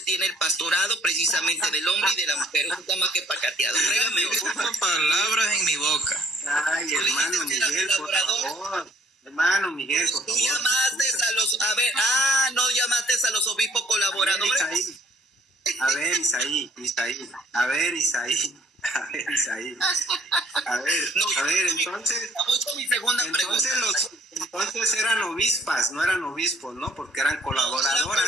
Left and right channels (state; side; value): normal; both; correlation 0.61